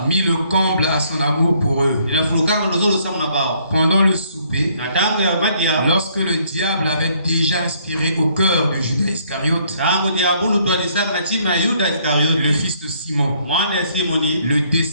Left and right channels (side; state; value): both; inverted; correlation -0.65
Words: mis le comble à son amour pour eux. inafurukaka ndozolo samu na bao Pendant le souper, na tango ya madia lorsque le diable avait déjà inspiré au cœur de Judas Iscariote, tango diabulu twalisaka na chima ya Yuda le Iskariote fils de Simon, mwana ya Simoni le